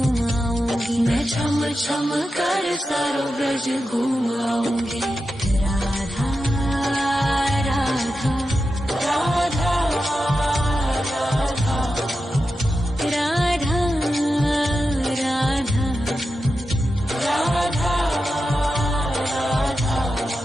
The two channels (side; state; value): both; normal; correlation 0.90